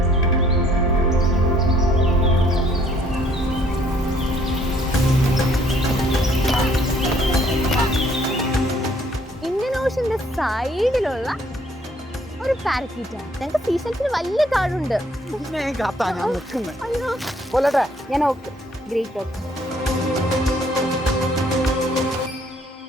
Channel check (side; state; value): both; normal; correlation 0.63